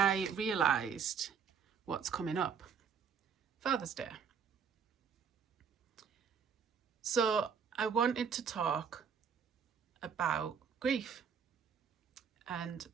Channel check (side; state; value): left; quieter; 6.8 dB